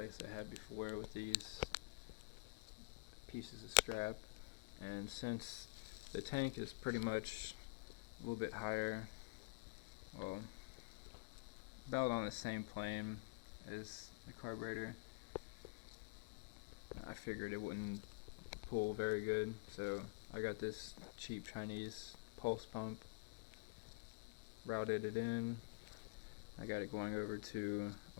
I had before with these pieces of strap, and since the tank is pretty much a little bit higher, well, about on the same plane as the carburetor, I figured it wouldn't pull very good, so I got this cheap Chinese pulse pump, routed it in. I got it going over to a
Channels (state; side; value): quieter; right; 28.6 dB